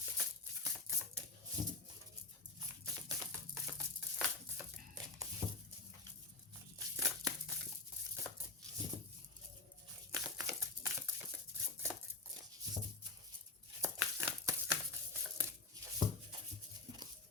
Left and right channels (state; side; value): quieter; right; 3.5 dB